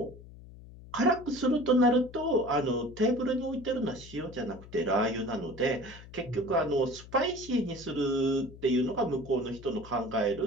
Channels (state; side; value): noise; left; hum, 18 dB below the sound